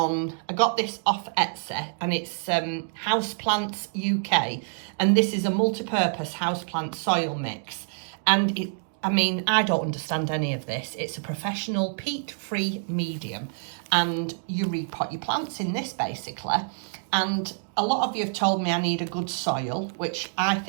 got this off Etsy, and it's Houseplants UK. And this is a multi-purpose houseplant soil mix. And I don't understand any of this. It's a professional peat-free medium. And you repot your plants in this basically. And a lot of you have told me I need a good soil, which I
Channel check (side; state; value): left; silent; 60 dB below the other